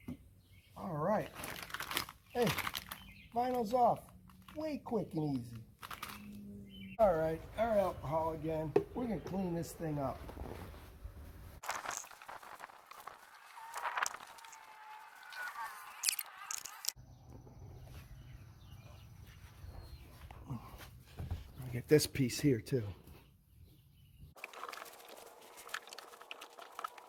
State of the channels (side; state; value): both; identical; correlation 1.00